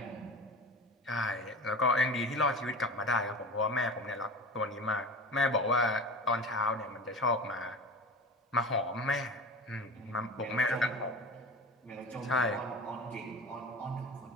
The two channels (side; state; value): both; normal; correlation 0.33